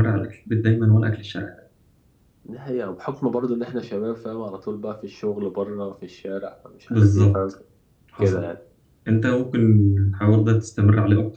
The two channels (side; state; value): both; identical; correlation 1.00